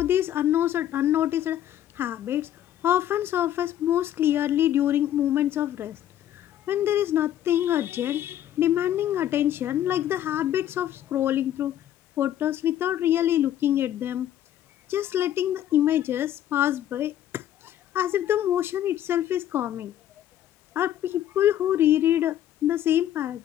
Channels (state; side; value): quieter; right; 11.6 dB